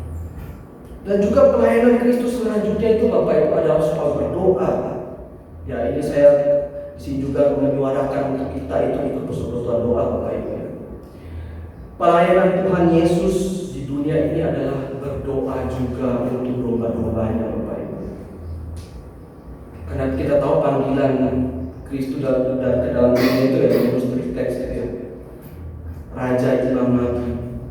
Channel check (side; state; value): both; identical; correlation 1.00